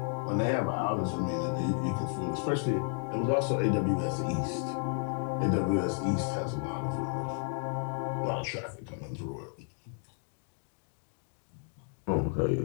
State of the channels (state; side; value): silent; right; 56 dB below the other